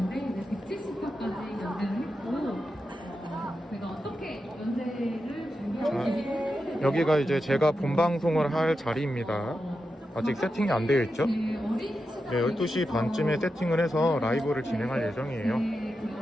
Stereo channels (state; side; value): normal; both; correlation 0.89